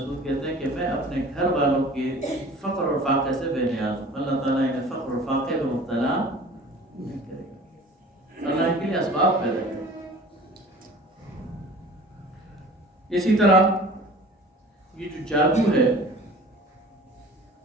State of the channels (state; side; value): normal; both; correlation 0.45